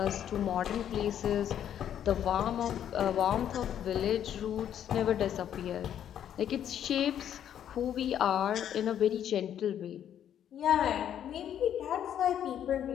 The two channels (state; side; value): quieter; right; 10.0 dB